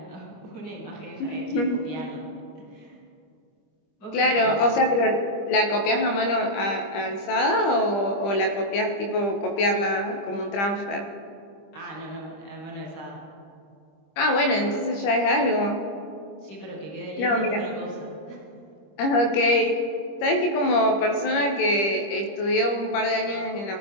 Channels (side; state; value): right; late; 25 ms